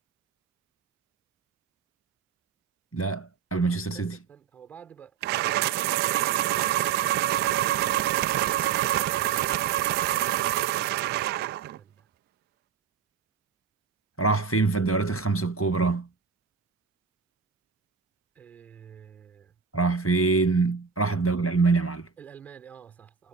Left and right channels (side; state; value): left; quieter; 6.5 dB